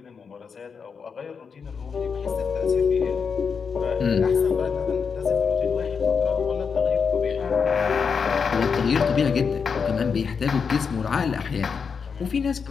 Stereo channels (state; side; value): quieter; right; 5.9 dB